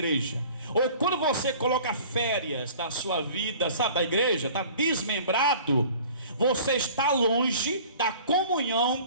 ou quando você coloca férias da sua vida, sabe, da igreja, está desmembrado, você está longe da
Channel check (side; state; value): both; inverted; correlation -0.46